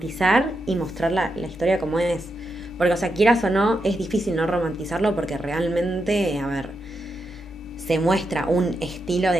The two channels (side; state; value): both; normal; correlation 0.85